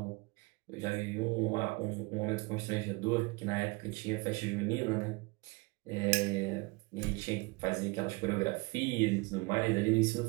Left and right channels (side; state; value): left; quieter; 26.4 dB